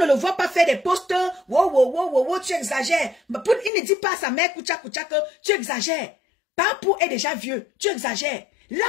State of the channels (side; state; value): right; drops out; at 3.7 s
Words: le voit pas faire des postes. Wow, tu exagères. Il ne dit pas à sa mère Koucha que tu exagères. Papou est déjà vieux, tu exagères. Là,